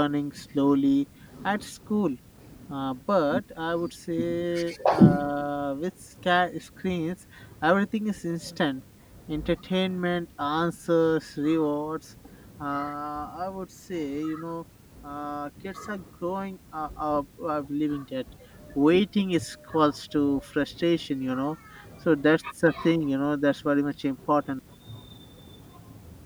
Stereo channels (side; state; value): both; identical; correlation 1.00